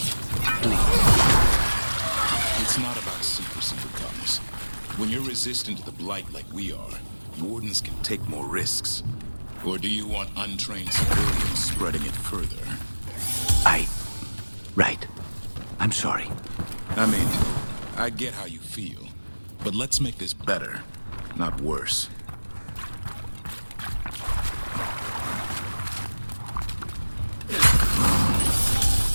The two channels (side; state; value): both; inverted; correlation -1.00